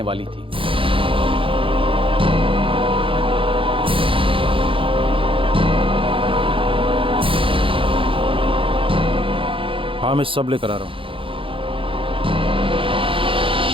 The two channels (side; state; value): left; late; 0.25 ms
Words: वाली थी। हाँ, मैं सब लेकर आ रहा हूं।